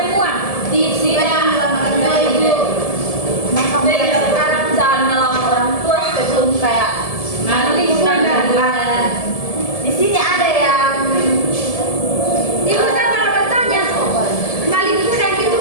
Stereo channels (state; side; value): late; right; 1.7 ms